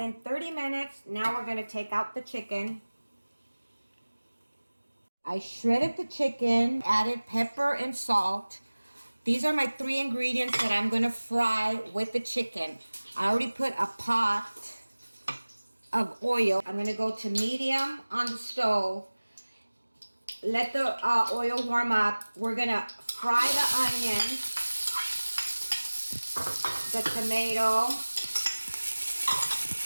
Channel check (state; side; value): inverted; both; correlation -1.00